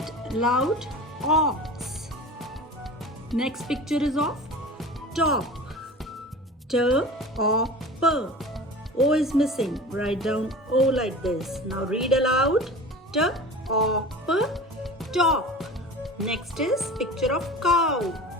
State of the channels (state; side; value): normal; both; correlation 0.36